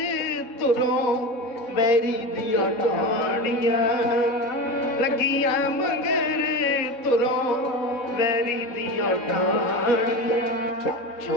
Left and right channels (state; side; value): late; right; 4.2 ms